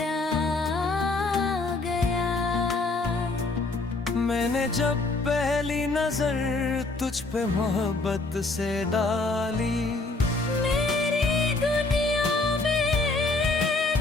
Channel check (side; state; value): right; quieter; 3.3 dB